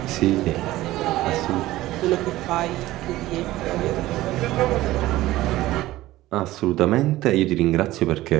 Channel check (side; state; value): left; quieter; 16.6 dB